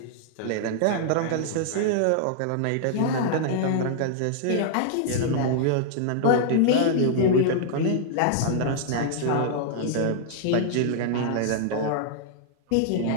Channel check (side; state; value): both; different; correlation -0.01